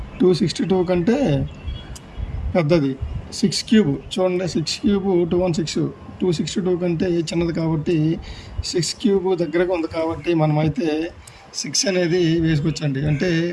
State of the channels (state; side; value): identical; both; correlation 1.00